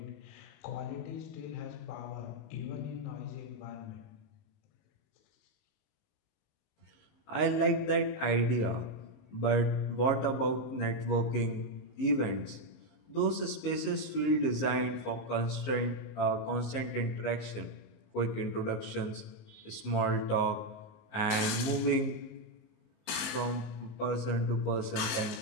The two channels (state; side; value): late; right; 19 ms